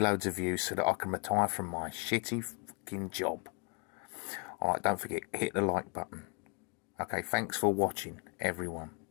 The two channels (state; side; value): quieter; right; 35.7 dB